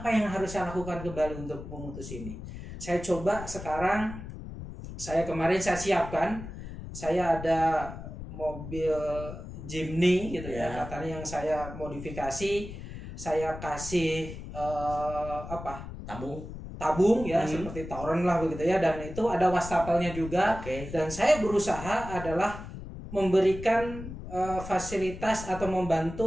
yang harus saya lakukan kembali untuk memutus ini? Saya coba sekarang, kemarin saya siapkan, saya ada mobil Jimny gitu ya, katanya yang saya modifikasi, saya kasih tabung ya, seperti Tauron lah begitu ya, dan itu ada wastafelnya juga. Dan saya berusaha adalah memberikan fasilitas atau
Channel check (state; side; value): noise; left; rumble, 10 dB below the sound